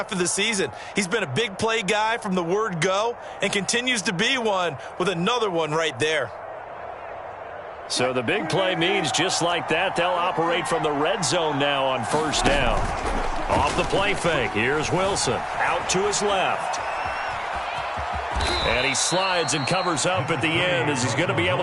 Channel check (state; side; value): identical; both; correlation 1.00